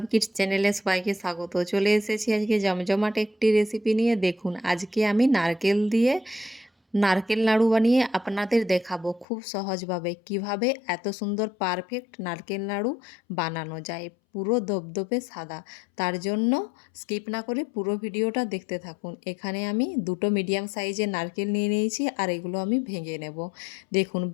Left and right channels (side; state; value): right; drops out; at 9.2 s